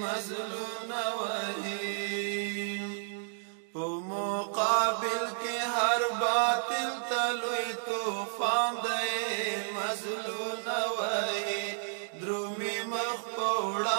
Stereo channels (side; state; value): left; silent; digital silence